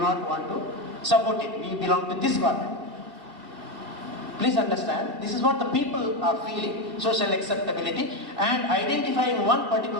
want to support it. We belong to this government. Please understand, this is what the people are feeling, social acceptability and identifying one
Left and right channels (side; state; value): left; late; 2.2 ms